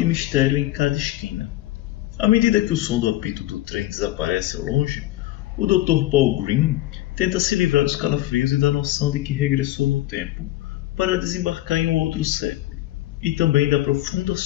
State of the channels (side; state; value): right; quieter; 15.9 dB